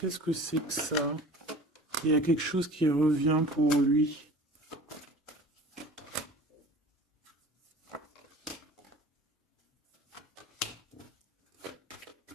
que c'est que ça? Il y a quelque chose qui revient pour lui.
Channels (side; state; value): both; normal; correlation 0.43